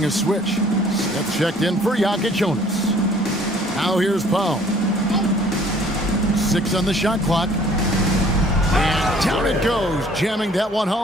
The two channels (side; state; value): both; normal; correlation 0.55